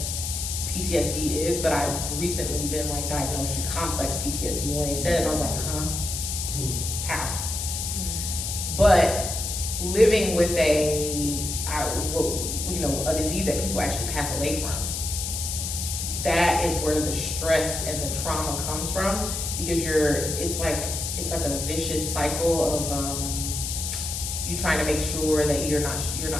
PTSD is, but I've recently been like diagnosed with complex PTSD. When they said it, I was like, huh? How? But living with a disease that people actually pass away from, that is where the stress and the trauma comes from, because it's like a vicious cycle of you trying to make sure that you're not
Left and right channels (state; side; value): noise; left; hiss, 3 dB below the sound